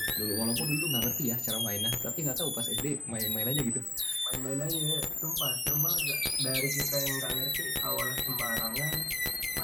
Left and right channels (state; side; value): normal; both; correlation 0.96